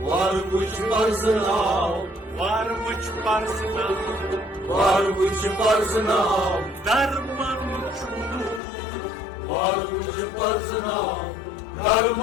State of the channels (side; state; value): right; drops out; at 8.6 s